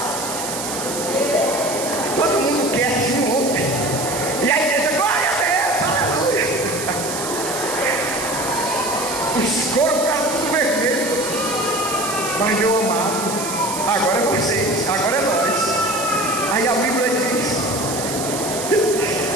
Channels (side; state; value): right; noise; hiss, 6 dB below the sound